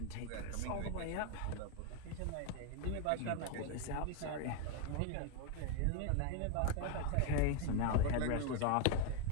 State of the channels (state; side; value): different; both; correlation 0.00